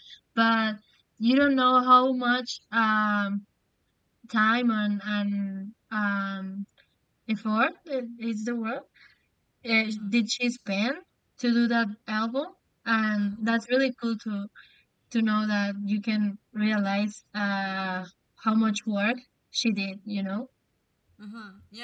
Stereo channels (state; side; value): identical; both; correlation 1.00